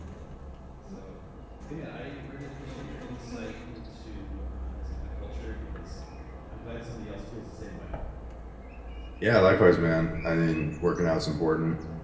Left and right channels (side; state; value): both; identical; correlation 1.00